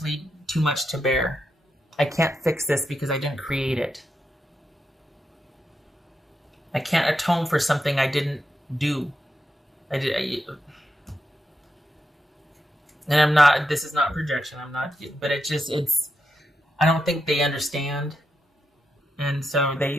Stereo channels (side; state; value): both; normal; correlation 0.85